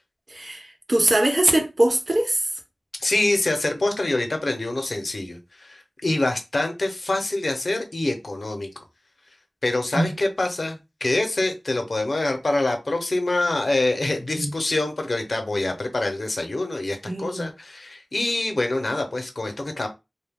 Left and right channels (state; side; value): normal; both; correlation 0.97